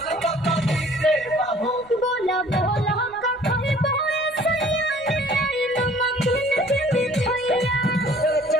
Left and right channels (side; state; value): right; noise; rumble, 28 dB below the sound